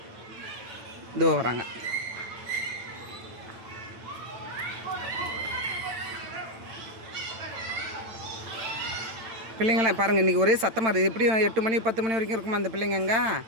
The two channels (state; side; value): late; left; 9.0 ms